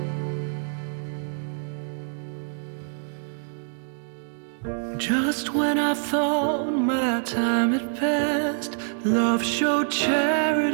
Just when I thought my time had passed, love showed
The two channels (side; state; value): left; silent; digital silence